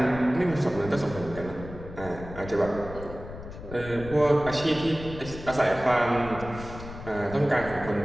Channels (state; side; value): noise; left; rumble, 13 dB below the sound